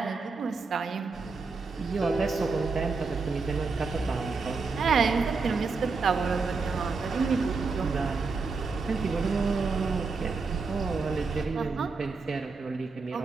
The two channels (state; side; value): quieter; left; 4.4 dB